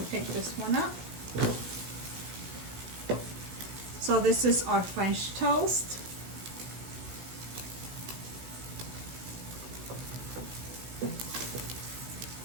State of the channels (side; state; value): left; late; 16 ms